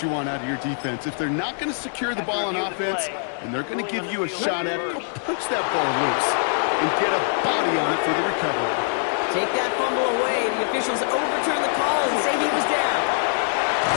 want out of your defense. If they're not going to secure the ball on offense, and they're going to give you a shot at it, go punch that ball loose and get a body on it for the recovery. Take that fumble away. The officials overturn the call and say he was down.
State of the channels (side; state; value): right; silent; 60 dB below the other